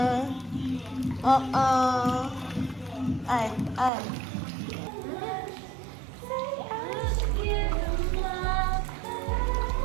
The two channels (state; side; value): drops out; left; at 3.9 s